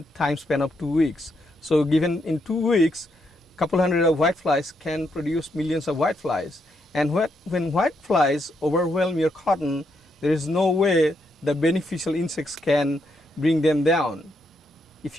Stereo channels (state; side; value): normal; both; correlation 0.78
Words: time span of 2 weeks. So given in 2 weeks, a couple hundred of whiteflies can produce millions of whiteflies. And when whiteflies overwhelm your cotton, there is no way the beneficial insects can bring them down. If